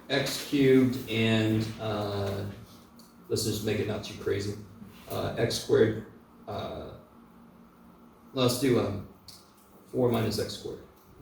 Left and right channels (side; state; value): both; identical; correlation 1.00